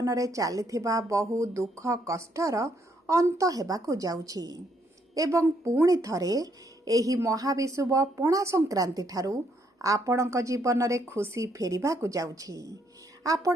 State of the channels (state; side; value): normal; both; correlation 0.72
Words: में चलिथिबा बहु दुख कष्टर अंत हेबाकु जाउछि एवं पुणी थरे एही महाविषुव पणा संक्रांति ठारू आपणक जीवन में खुशी फेरिबाकु जाउछि।